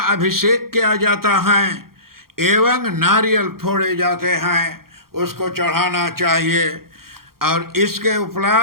अभिषेक किया जाता है एवं नारियल फोड़े जाते हैं, उसको चढ़ाना चाहिए। और इसके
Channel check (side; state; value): left; late; 0.93 ms